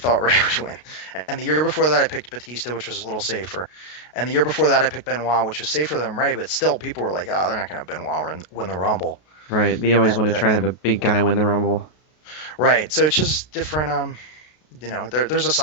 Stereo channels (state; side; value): late; right; 33 ms